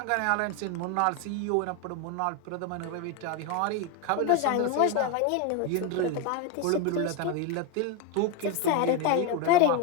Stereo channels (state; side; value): different; both; correlation 0.02